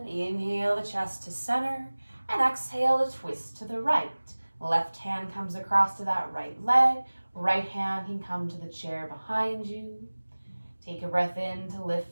inhale the chest to center and exhale to twist to the right. Left hand comes across to that right leg. Right hand can come to the chair behind you. Take a breath in to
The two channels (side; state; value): both; inverted; correlation -1.00